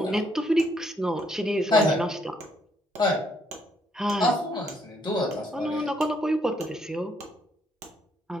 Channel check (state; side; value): normal; both; correlation 0.71